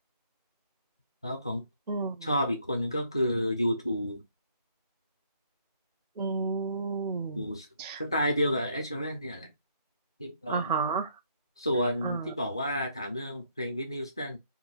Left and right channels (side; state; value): both; inverted; correlation -0.68